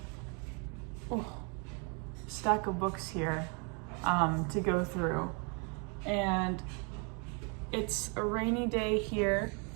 stack of books here to go through. And it's a rainy day here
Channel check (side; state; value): left; quieter; 35.9 dB